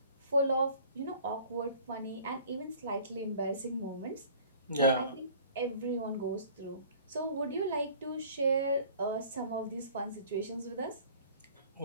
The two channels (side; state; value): both; inverted; correlation -0.49